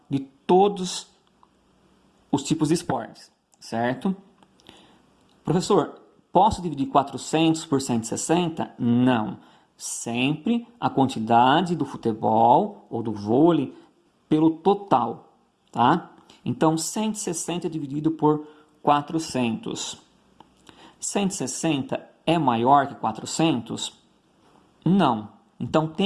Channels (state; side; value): identical; both; correlation 1.00